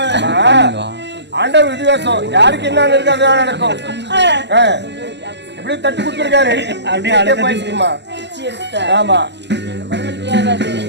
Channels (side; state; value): left; late; 0.50 ms